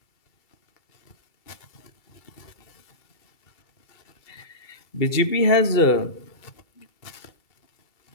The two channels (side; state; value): right; late; 2.3 ms